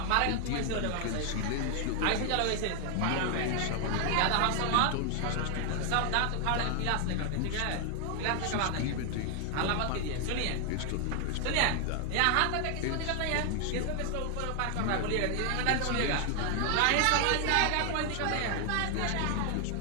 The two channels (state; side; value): different; both; correlation 0.00